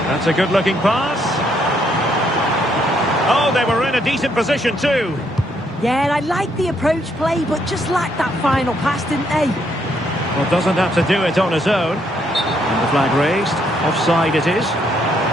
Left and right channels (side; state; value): both; normal; correlation 0.72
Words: That's a good-looking pass. Oh, they were in a decent position too. Yeah, I like the approach play, but just lacked that final pass, didn't they? Well, doesn't have to do it on his own. And the flag raised. Offside it is.